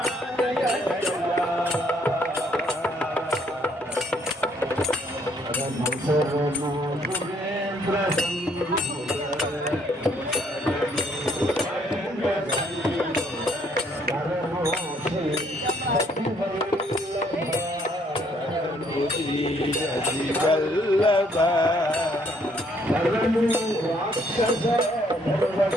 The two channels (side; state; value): both; normal; correlation 0.66